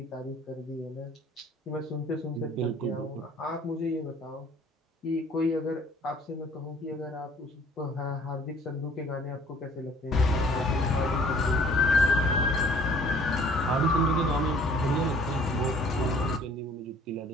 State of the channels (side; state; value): both; normal; correlation 0.55